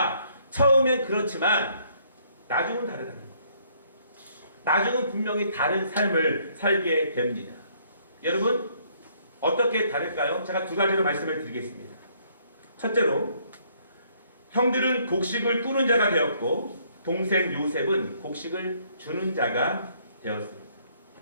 처음엔 그렇지만 나중은 다르다. 나중은 분명히 다른 삶을 살게 됩니다. 여러분, 어떻게 다를까요? 제가 두 가지로 말씀을 드리겠습니다. 첫째로, 형들은 곡식을 꾸는 자가 되었고 동생 요셉은 곡식을 주는 자가 되었습니다.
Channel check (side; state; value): both; inverted; correlation -0.66